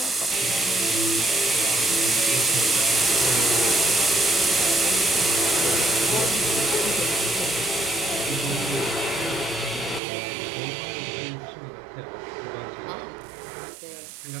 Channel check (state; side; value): drops out; left; at 10.0 s